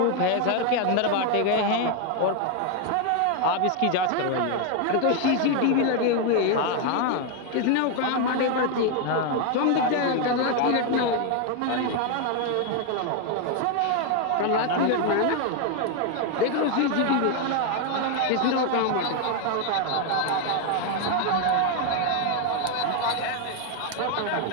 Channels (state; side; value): different; both; correlation 0.01